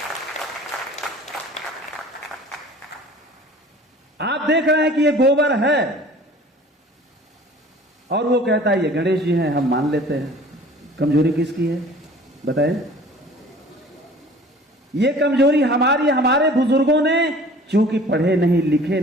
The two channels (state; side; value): normal; both; correlation 0.47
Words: आप देख रहे हैं कि ये गोबर है और वो कहता है ये गणेश जी हैं, हम मान लेते हैं। कमजोरी किसकी है बताएं? ये कमजोरी हमारी, हमारे बुजुर्गों ने, चूंकि पढ़े नहीं, लिखे